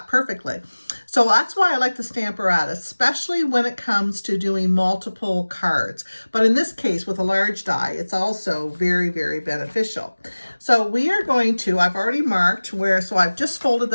perfectly. So that's why I like the stamp apparatus, especially when it comes to doing multiple cards. But in this case, with a large die, it's also very, very beneficial. So we are going to, I've already marked where, so I've just folded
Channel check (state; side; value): inverted; both; correlation -1.00